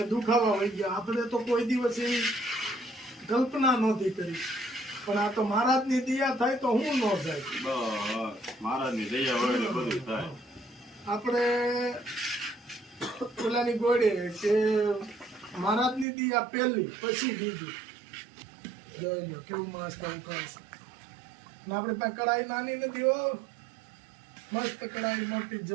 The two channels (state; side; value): drops out; left; at 16.1 s